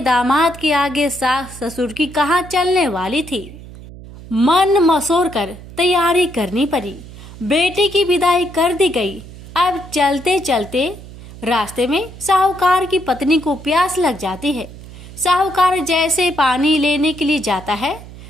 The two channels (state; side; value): noise; right; hum, 16 dB below the sound